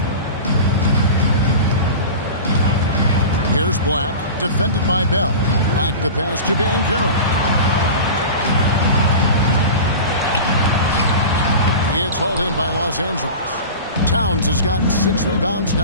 Here's Black, defended by Bell. Black the pass to Banchero. It's hauled in by Los Angeles. Towns has gotten 6 rebounds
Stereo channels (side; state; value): both; inverted; correlation -0.32